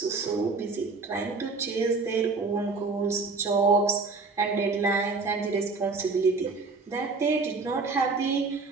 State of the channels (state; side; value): quieter; left; 4.1 dB